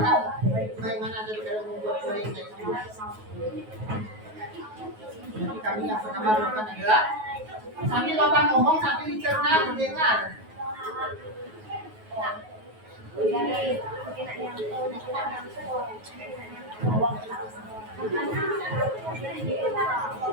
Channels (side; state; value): left; late; 9.4 ms